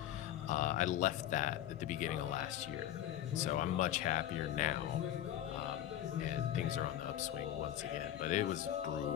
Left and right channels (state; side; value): quieter; right; 11.9 dB